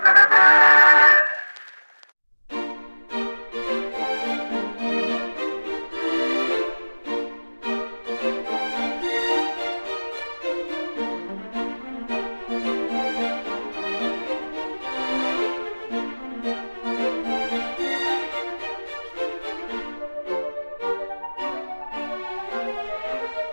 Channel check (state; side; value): inverted; both; correlation -1.00